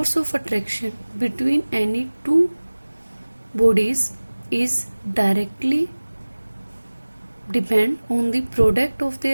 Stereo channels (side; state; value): both; inverted; correlation -1.00